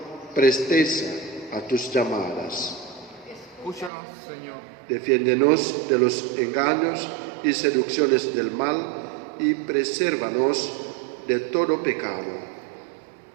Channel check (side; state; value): left; drops out; at 3.9 s